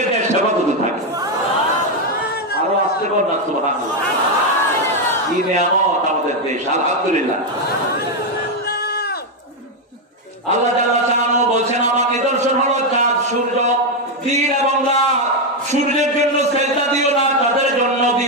দেশ হেফাজতে থাকে। আরো আসতে পার না সুবহানাল্লাহ। কি নিয়ামত আমাদের দেশ, আলহামদুলিল্লাহ। আল্লাহ জাল্লা শাআনহু বলছেন আমার নিদর্শন হলো চাঁদ, সূর্য, দিন এবং রাত। সূর্যের জন্য সেজদা দিও না, তাদের জন্য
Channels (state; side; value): normal; both; correlation 0.04